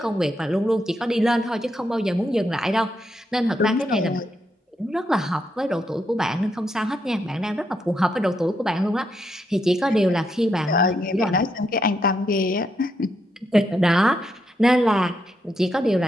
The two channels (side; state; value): both; normal; correlation 0.80